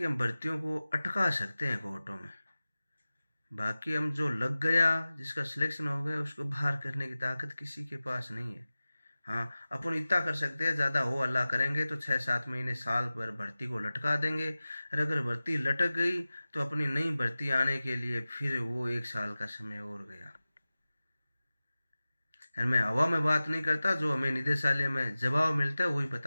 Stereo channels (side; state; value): both; inverted; correlation -0.97